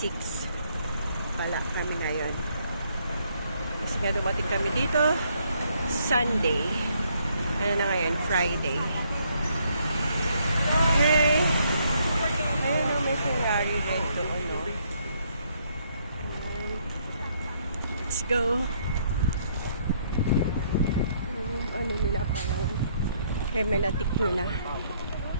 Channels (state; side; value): inverted; both; correlation -0.70